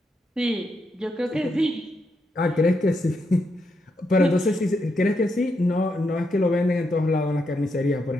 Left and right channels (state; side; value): normal; both; correlation 0.81